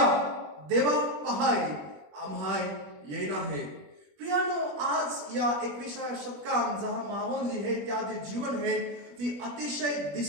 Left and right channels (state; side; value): late; left; 21 ms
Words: देवा पहाय आम्हाय येईन आहे. प्रियानो, आज या 21व्या शतकात जहां माहोल जी है त्या जे जीवन है ती अतिशय